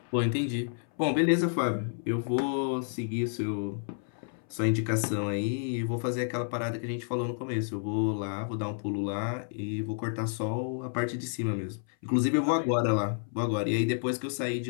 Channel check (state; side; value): silent; right; 58 dB below the other